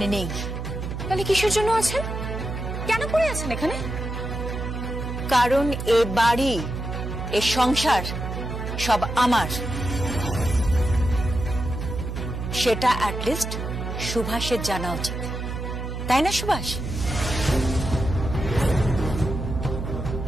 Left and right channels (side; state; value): right; noise; hum, 5 dB below the sound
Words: নেই। তাহলে কিসের জন্য আছেন? কেন পড়ে আছেন এখানে? কারণ এ বাড়ি, এ সংসার সব আমার। সেটা অ্যাটলিস্ট সুভাষের জানা উচিত, তাই না সুভাষ?